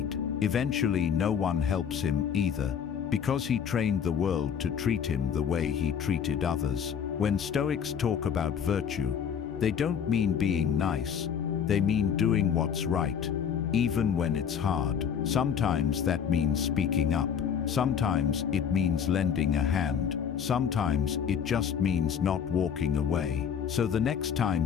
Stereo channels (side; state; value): right; quieter; 7.8 dB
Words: Eventually, no one helps him either, because he trained the world to treat him the way he treated others. When Stoics talk about virtue, they don't mean being nice, they mean doing what's right, even when it's hard. Sometimes that means speaking up. Sometimes it means lending a hand. Sometimes it just means not walking away. So the next